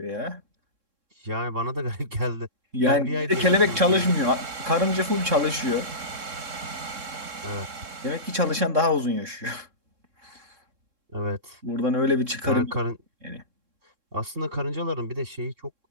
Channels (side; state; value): left; late; 3.7 ms